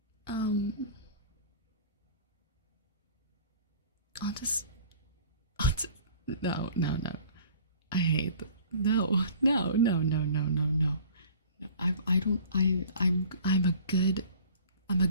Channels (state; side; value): inverted; both; correlation -0.46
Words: I'll just no. I hate that. No. I'm a